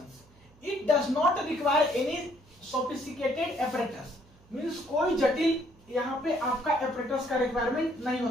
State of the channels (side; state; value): right; noise; hum, 28 dB below the sound